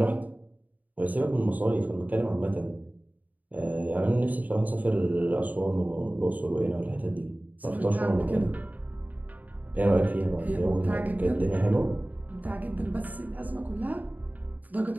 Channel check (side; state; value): left; late; 0.078 ms